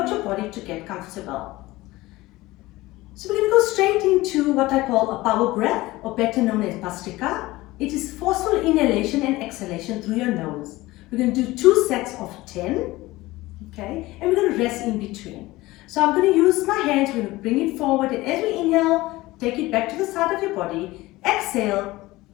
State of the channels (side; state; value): right; quieter; 19.1 dB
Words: your body to get comfortable. So we're going to go straight into what I call a power breath, or better known as Bhastrika. It is forceful inhalation and exhalation through your nose. We're going to do 2 sets of 10, okay, and we're going to rest in between. So I'm going to use my hands, we're going to bring it forward, and as we inhale, take it back to the side of your body, exhale